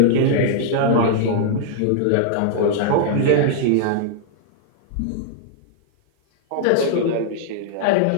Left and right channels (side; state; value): both; different; correlation -0.01